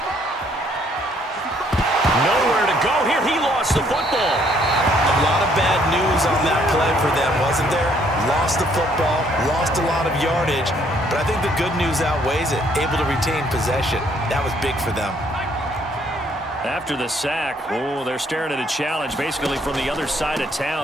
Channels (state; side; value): normal; both; correlation 0.66